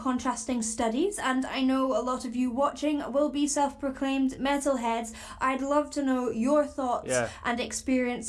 studies, and I know a lot of you watching will be self-proclaimed metalheads. I'd love to know your thoughts and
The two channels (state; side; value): identical; both; correlation 1.00